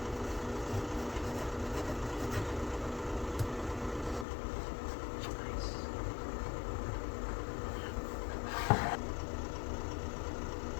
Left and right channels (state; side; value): drops out; right; at 4.2 s